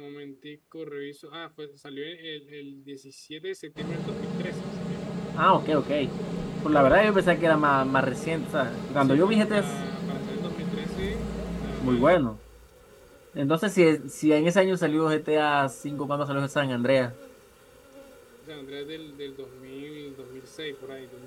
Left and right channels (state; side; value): identical; both; correlation 1.00